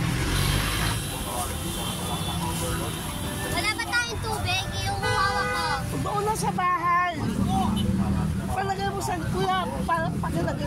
Wala ba tayong tubig? Yung hawak ko. Doon na sa bahay. Palagay mo sa kuya,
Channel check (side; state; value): both; identical; correlation 1.00